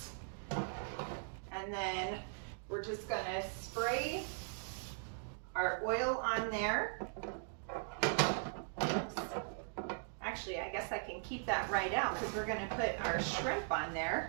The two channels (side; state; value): left; silent; digital silence